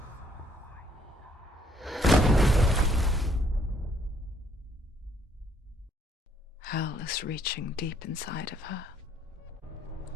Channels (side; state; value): both; normal; correlation 0.66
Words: Hell is reaching deep inside of her.